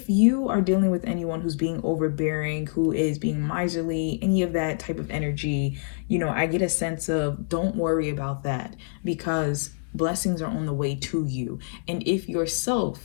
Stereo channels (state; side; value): silent; right; digital silence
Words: you are dealing with anyone who's being overbearing, who is being miserly, any of that type of energy, you know, I get a sense of don't worry about that because blessings are on the way to you. And if